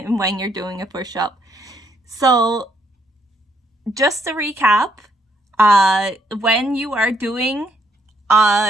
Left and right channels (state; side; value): normal; both; correlation 0.72